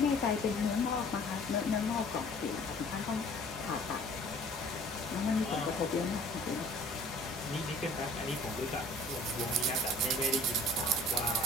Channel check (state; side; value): normal; both; correlation 0.50